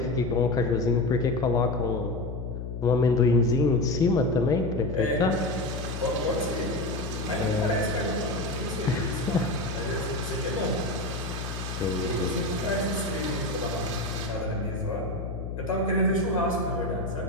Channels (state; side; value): noise; left; hum, 6 dB below the sound